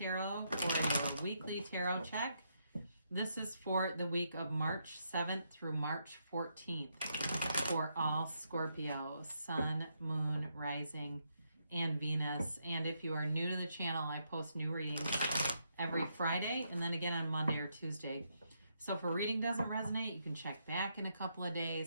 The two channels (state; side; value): inverted; both; correlation -0.78